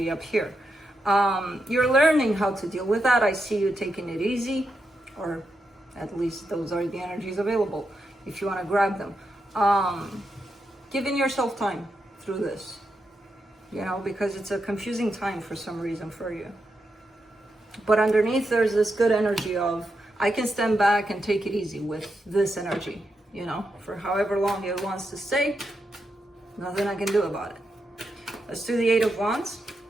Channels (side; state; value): both; normal; correlation 0.85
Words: up here. You're learning how to deal with that. I see you taking it easy, or at least those are the energies available if you want to grab them. Giving yourself time through this, you know, because it's a confusing time for some reason for you. But underneath there's this good energy of, I can stand back and take it easy with this energy, you know, for however long it wants to stay, nothing I can do about it. Let's do the Eight of Wands.